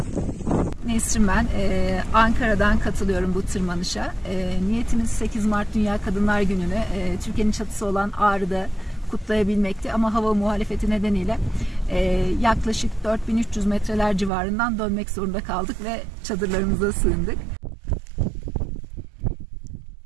Nesrin ben. Ankara'dan katılıyorum bu tırmanışa. Niyetimiz 8 Mart Dünya Kadınlar Günü'nü Türkiye'nin çatısı olan Ağrı'da kutlayabilmekti. Ama hava muhalefeti nedeniyle yaklaşık 4300 metreler civarından dönmek zorunda kaldık ve çadırlarımıza sığındık.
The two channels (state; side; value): drops out; left; at 14.3 s